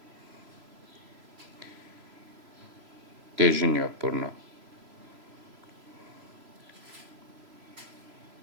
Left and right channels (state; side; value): late; left; 3.0 ms